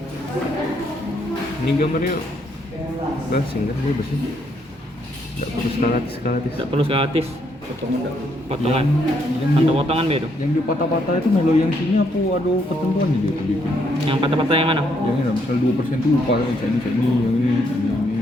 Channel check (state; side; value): normal; both; correlation 0.73